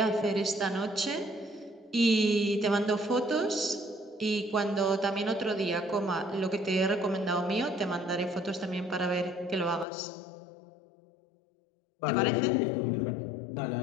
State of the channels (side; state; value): right; drops out; at 9.9 s